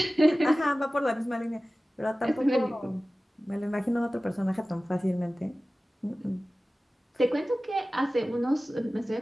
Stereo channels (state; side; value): normal; both; correlation 0.97